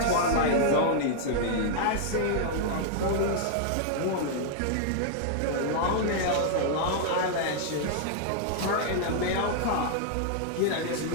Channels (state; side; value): different; both; correlation -0.01